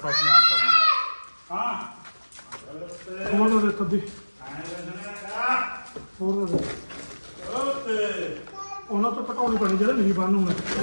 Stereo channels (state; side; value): inverted; both; correlation -1.00